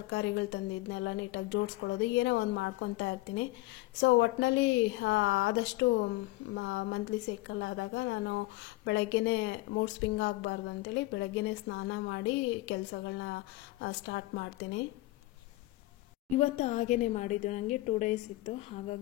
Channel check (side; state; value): right; quieter; 19.3 dB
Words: ತಂದಿದ್ದನ್ನೆಲ್ಲ ನೀಟಾಗಿ ಜೋಡಿಸ್ಕೊಳ್ಳೋದು ಏನೋ ಒಂದು ಮಾಡ್ಕೊತಾ ಇರ್ತೀನಿ. ಸೊ ಒಟ್ಟಿನಲ್ಲಿ ಆದಷ್ಟು ಮಂತ್ಲಿ ಸೈಕಲ್ ಆದಾಗ ನಾನು ಬೆಳಗ್ಗೆನೇ ಮೂಡ್ ಸ್ವಿಂಗ್ ಆಗಬಾರ್ದು ಅಂತೇಳಿ ಬೆಳಗ್ಗೆನೇ ಸ್ನಾನ ಮಾಡಿ ಕೆಲಸಗಳನ್ನ ಸ್ಟಾರ್ಟ್ ಮಾಡ್ತೀನಿ. ಇವತ್ತು ಹಾಗೇ ಮಾಡಿದ್ದು, ನನಗೆ 2 ಡೇಸ್ ಇತ್ತು.